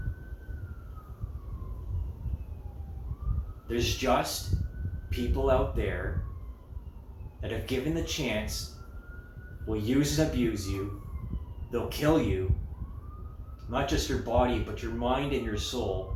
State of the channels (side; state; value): both; identical; correlation 1.00